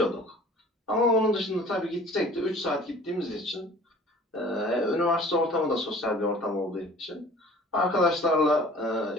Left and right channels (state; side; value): normal; both; correlation 0.48